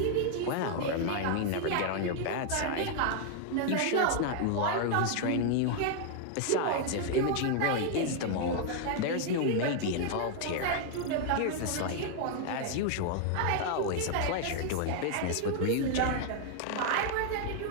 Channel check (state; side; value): different; both; correlation 0.00